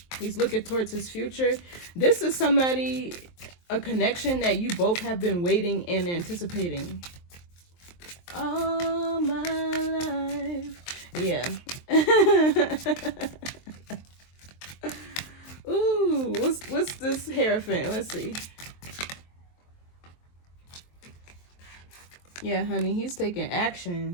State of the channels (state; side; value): late; right; 23 ms